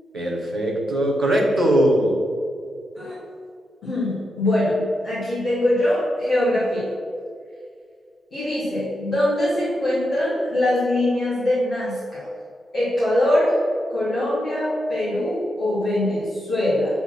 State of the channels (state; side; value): normal; both; correlation 0.85